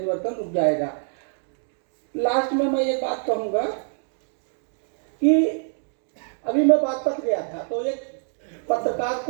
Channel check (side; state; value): left; silent; digital silence